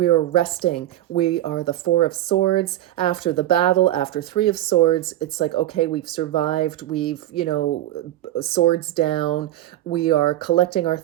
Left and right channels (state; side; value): quieter; left; 13.9 dB